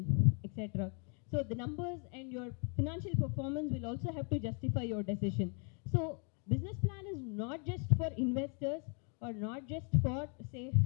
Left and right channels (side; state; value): right; quieter; 38.3 dB